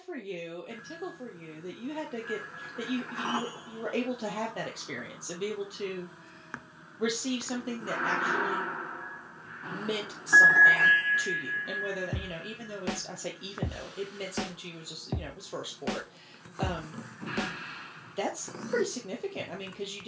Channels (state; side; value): identical; both; correlation 1.00